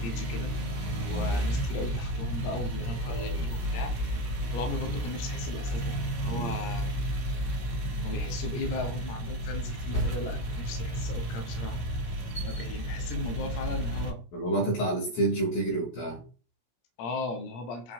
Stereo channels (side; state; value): right; late; 17 ms